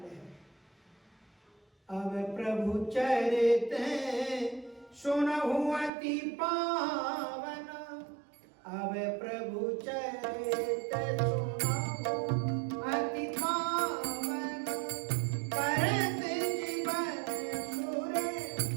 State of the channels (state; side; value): drops out; left; at 5.9 s